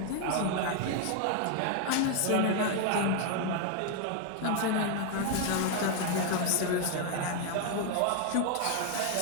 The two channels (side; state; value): both; different; correlation 0.00